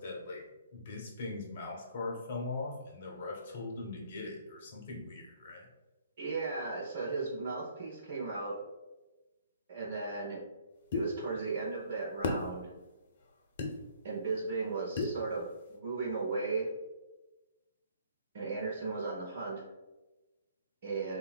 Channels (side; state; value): both; inverted; correlation -0.61